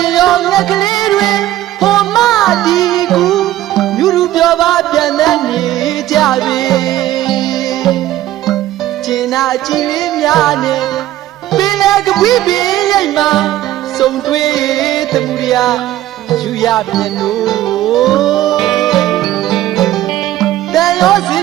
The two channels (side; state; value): left; quieter; 14.1 dB